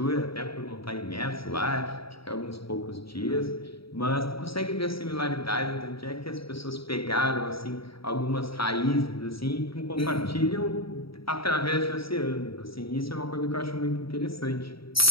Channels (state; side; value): late; right; 0.75 ms